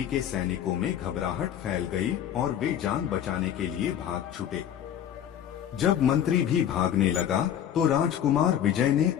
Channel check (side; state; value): right; quieter; 10.0 dB